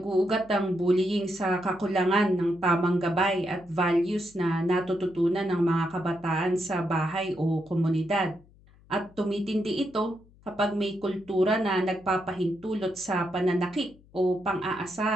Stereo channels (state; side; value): noise; left; hum, 27 dB below the sound